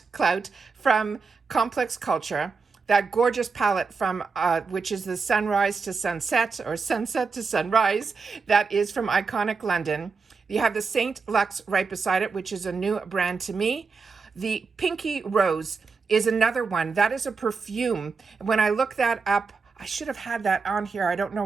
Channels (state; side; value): quieter; left; 4.8 dB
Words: Clout from Complex Culture. That gorgeous palette from, which is the Sunrise to Sunset or Sunset to Sunrise, that is from Iconic London. You have the Saint Luxe right beside it, which is a new brand to me. The Pinky Rose is another one. That is a perfume. When I look that up, I should have had that on here. I don't